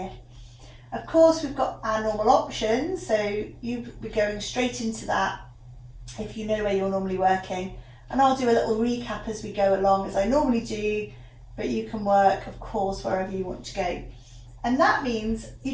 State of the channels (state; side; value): identical; both; correlation 1.00